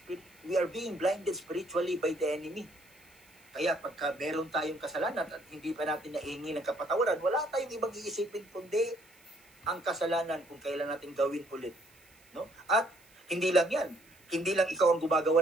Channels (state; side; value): noise; right; hiss, 28 dB below the sound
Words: are being blinded spiritually by the enemy. Kaya pagka meron tayong kasalanan at hindi pa natin nahingi ng kapatawaran, wala tayong ibang iisipin kundi ang kasalanan kung kailan natin gawin ulit. No? At hindi lang yan. Hindi lang ikaw ang